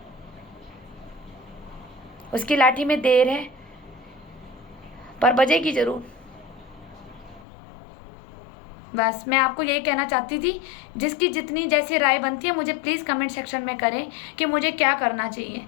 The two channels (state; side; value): drops out; right; at 7.5 s